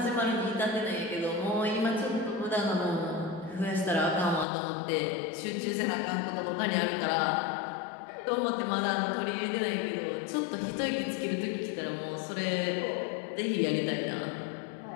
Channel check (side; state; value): right; drops out; at 4.5 s